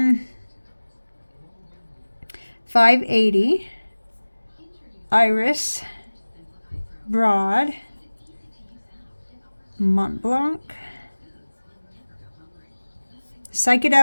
580 Iris Broad Montblanc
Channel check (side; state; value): both; inverted; correlation -1.00